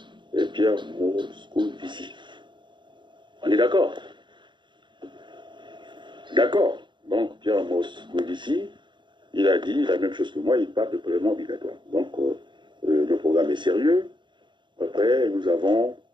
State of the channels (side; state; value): left; late; 0.23 ms